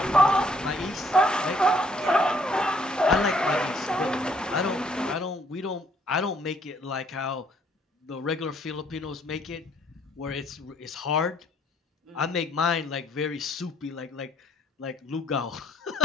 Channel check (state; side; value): normal; both; correlation 0.65